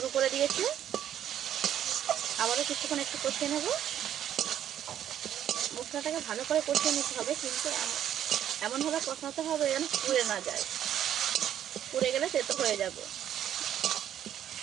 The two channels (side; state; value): left; quieter; 10.6 dB